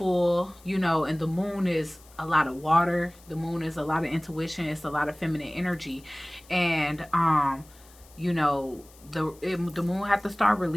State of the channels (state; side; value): noise; left; hiss, 25 dB below the sound